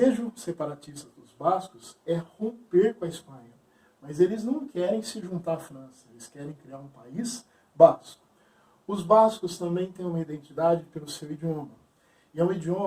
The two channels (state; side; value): identical; both; correlation 1.00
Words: separatista dos bascos é romper com a Espanha, mas eles não querem se juntar à França, eles querem criar um país basco. Os bascos também têm uma identidade pelo seu idioma, e é o